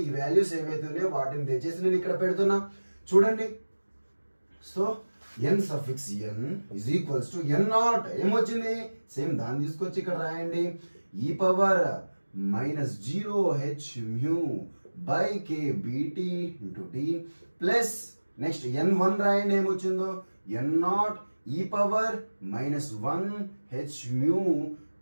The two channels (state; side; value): inverted; both; correlation -1.00